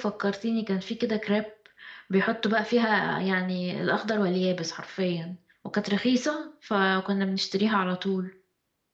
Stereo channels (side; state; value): both; identical; correlation 1.00